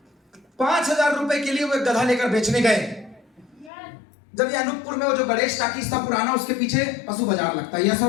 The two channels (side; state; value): right; drops out; at 3.7 s